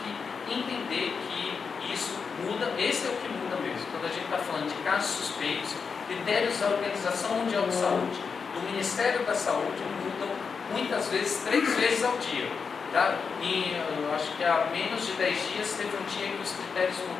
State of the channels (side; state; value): right; quieter; 5.6 dB